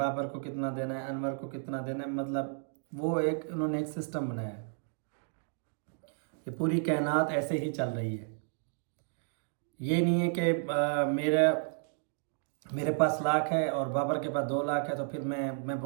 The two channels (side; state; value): left; silent; digital silence